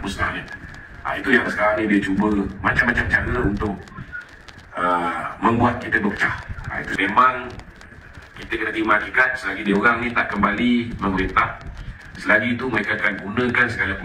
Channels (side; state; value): both; identical; correlation 1.00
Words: Itu yang sekarang ni dia cuba macam-macam cara untuk membuat kita berpecah. Itu memang kita kena terima hakikat selagi dia orang ni tak kembali memerintah. Selagi itu mereka akan gunakan segala